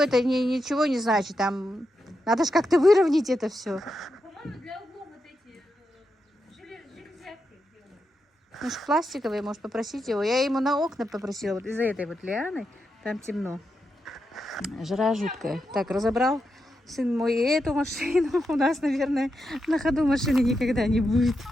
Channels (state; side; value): normal; both; correlation 0.85